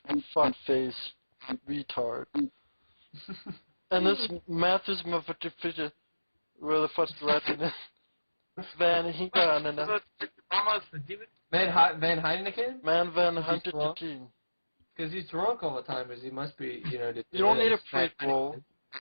fuckface, retard. And this Matthews motherfucker, where the fuck's the Latin is? Van Hinken and Van Heineken? Man Van Hunter. Because he's drunk all the time, because he must be, You don't need a prequel.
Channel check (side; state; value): both; inverted; correlation -1.00